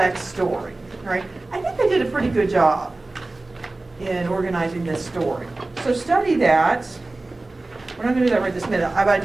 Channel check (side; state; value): left; quieter; 3.1 dB